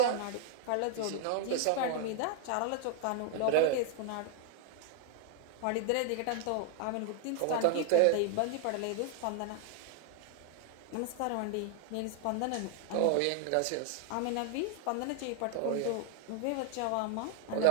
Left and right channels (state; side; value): different; both; correlation 0.00